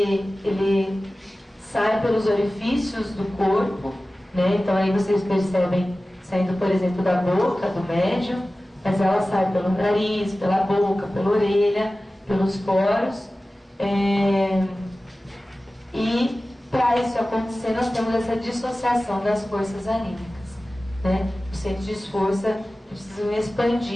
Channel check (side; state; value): both; normal; correlation 0.96